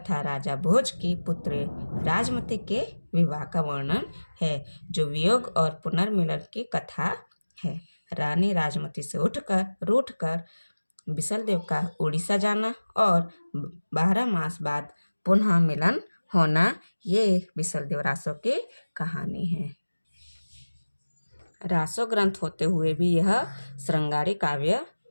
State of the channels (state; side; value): inverted; both; correlation -1.00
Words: राजा भोज की पुत्री राजमती के विवाह का वर्णन है, जो वियोग और पुनर्मिलन की कथा है। रानी राजमती से रूठकर बिसलदेव का उड़ीसा जाना और 12 मास बाद पुनः मिलन होना, ये बिसलदेव रासो की कहानी है। रासो ग्रंथ होते हुए भी यह श्रृंगारी काव्य